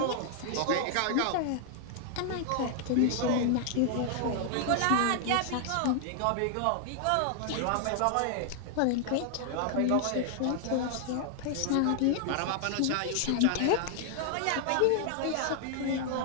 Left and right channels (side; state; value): both; different; correlation 0.00